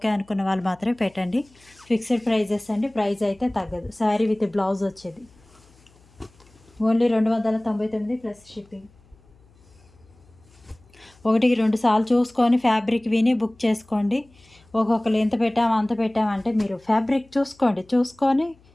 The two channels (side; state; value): left; noise; hum, 29 dB below the sound